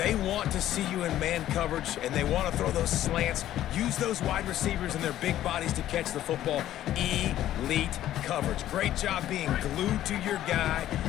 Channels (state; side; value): quieter; right; 12.8 dB